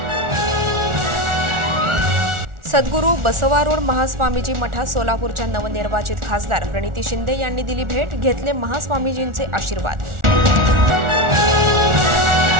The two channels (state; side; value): late; left; 1.4 ms